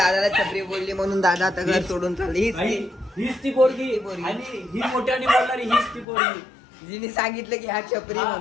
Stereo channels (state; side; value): drops out; right; at 6.1 s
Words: छपरी बोलली म्हणून दादा आता घर सोडून चालली. हीच ती पोरगी, आणि ही मोठ्याने बोलणारी हीच ती पोरगी. जिने सांगितलं की हा छपरी